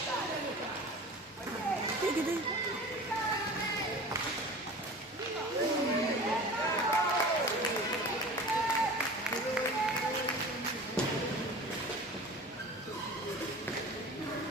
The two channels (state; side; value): normal; both; correlation 0.38